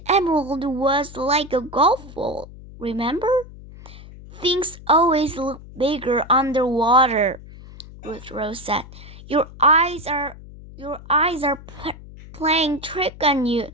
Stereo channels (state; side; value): noise; left; hum, 17 dB below the sound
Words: emerald was like a golf ball, remember? Things always look bigger underwater, Ruth Rose said. Your eyes are playing trick on you